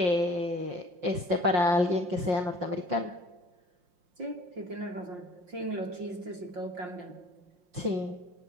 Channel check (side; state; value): left; late; 5.6 ms